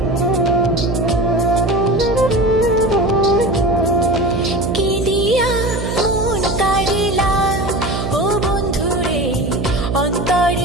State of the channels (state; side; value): noise; right; hum, 3 dB below the sound